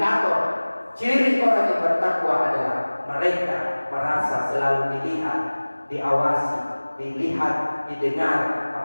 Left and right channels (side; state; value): both; inverted; correlation -1.00